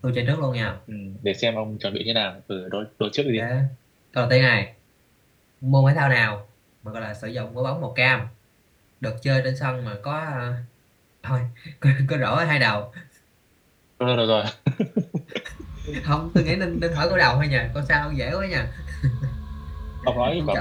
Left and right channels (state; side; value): identical; both; correlation 1.00